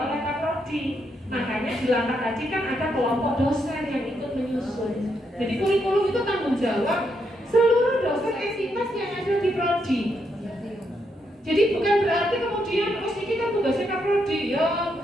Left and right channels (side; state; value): both; normal; correlation 0.79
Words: Kaprodi. Makanya di langkah tadi kan ada kelompok dosen yang ikut menyusun. Jadi kurikulum itu tanggung jawab seluruh dosen jurusan entitas yang ada di prodi. Jadi bukan berarti kemudian terus ini kan tugasnya kaprodi, ya